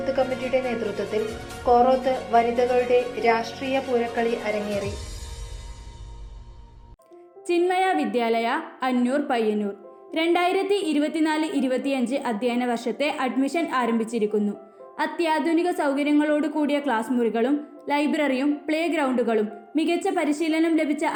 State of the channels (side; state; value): both; identical; correlation 1.00